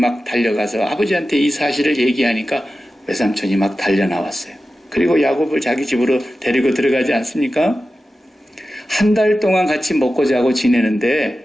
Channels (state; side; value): normal; both; correlation 0.93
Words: 달려가서 아버지한테 이 사실을 얘기하니까 외삼촌이 막 달려나왔어요. 그리고 야곱을 자기 집으로 데리고 들어가지 않습니까? 한 달 동안 같이 먹고 자고